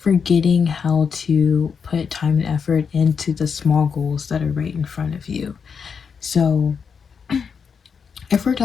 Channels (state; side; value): quieter; right; 6.2 dB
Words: how to put time and effort into the small goals that are right in front of you. So, if we're